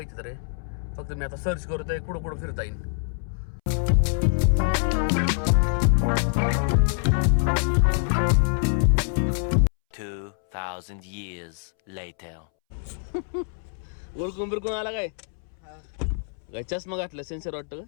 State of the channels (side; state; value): right; silent; 61 dB below the other